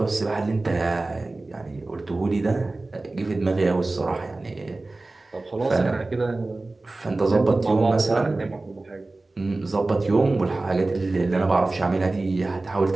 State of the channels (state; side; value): quieter; left; 3.1 dB